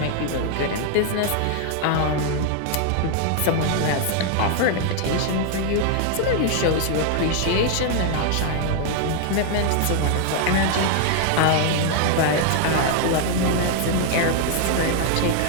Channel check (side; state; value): both; different; correlation 0.00